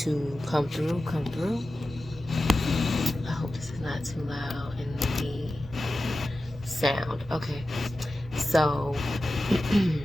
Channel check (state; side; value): normal; both; correlation 0.93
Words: to come through, come through. I hope this is not too loud in the sound. Okay, so